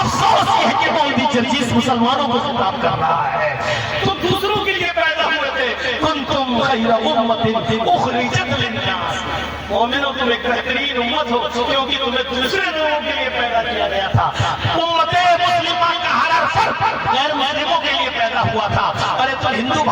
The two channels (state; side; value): identical; both; correlation 1.00